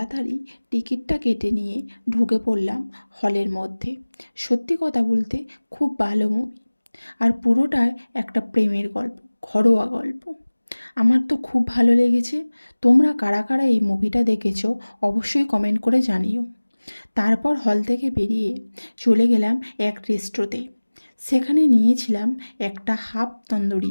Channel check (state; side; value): inverted; both; correlation -1.00